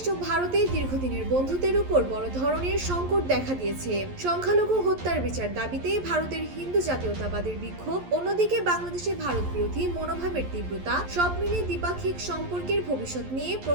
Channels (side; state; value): left; late; 11 ms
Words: ও ভারতের দীর্ঘদিনের বন্ধুত্বের উপর বড় ধরনের সংকট দেখা দিয়েছে। সংখ্যালঘু হত্যার বিচার দাবিতে ভারতের হিন্দু জাতীয়তাবাদের বিক্ষোভ, অন্যদিকে বাংলাদেশে ভারত বিরোধী মনোভাবের তীব্রতা, সব মিলে দ্বিপাক্ষিক সম্পর্কের ভবিষ্যৎ নিয়ে